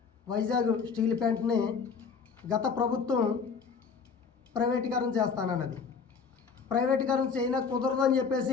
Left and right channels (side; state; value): right; quieter; 5.6 dB